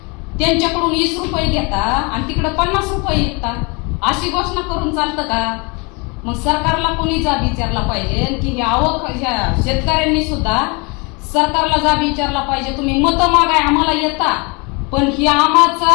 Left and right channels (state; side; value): quieter; right; 29.8 dB